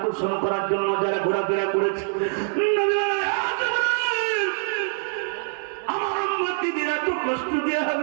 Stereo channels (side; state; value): left; silent; digital silence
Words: করার জন্য যারা ঘোরাফেরা করেছে, আমার উম্মতিরা তো কষ্ট দিয়ে হবে